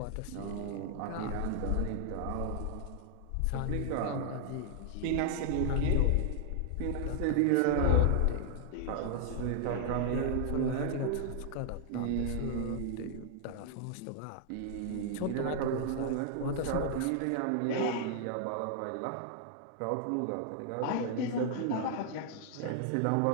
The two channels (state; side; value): different; both; correlation -0.01